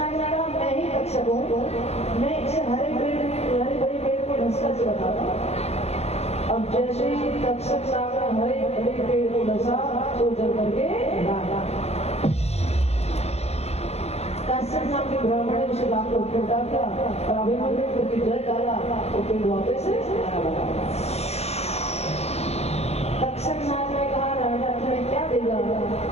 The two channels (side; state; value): right; late; 0.31 ms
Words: ने कहा मैं ही तक्षक हूँ, मैं इसे हरे भरे पेड़ को ढसकर से बताता। अब जैसे ही तक्षक नाग ने हरे भरे पेड़ को ढसा तो जल करके डाला। काश्यप नाम के ब्राह्मण ने उसे लाकर ऊपर डाल दिया और अभिमन्यु करके जल डाला तो पेड़ वापस से लगा। तक्षक नाग ने कहा राजा तुम्हें क्या देगा?